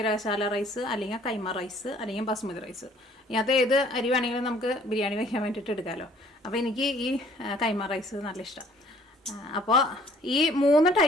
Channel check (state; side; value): normal; both; correlation 0.58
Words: റൈസ് അല്ലെങ്കിൽ കൈമ റൈസ് അല്ലെങ്കിൽ ബസ്മതി റൈസ്. ഇതിനകത്ത് ഏത് അരി വേണമെങ്കിലും നമുക്ക് ബിരിയാണി വയ്ക്കാൻ വേണ്ടിയിട്ട് എടുക്കാമല്ലോ. അപ്പോൾ എനിക്ക് ഈ കൈമ റൈസ് നല്ല ഇഷ്ടമാണ്. അപ്പോൾ ഈ 3